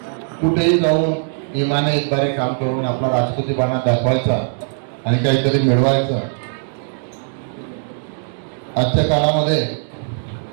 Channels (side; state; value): left; silent; digital silence